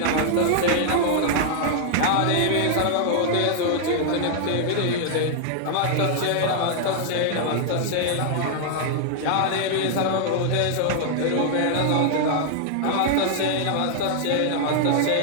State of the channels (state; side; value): different; both; correlation -0.01